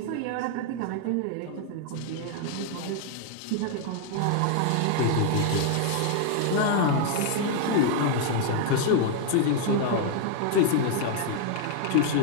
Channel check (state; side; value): different; both; correlation 0.00